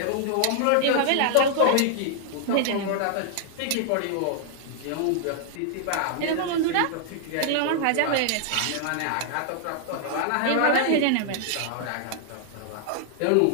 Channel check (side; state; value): both; different; correlation -0.01